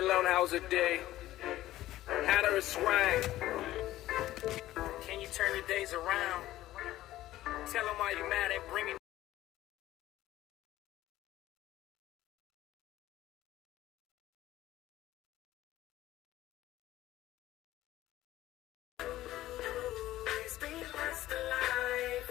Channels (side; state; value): right; quieter; 14.9 dB